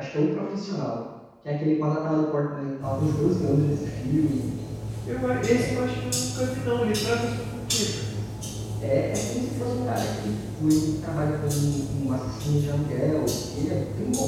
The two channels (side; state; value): both; identical; correlation 1.00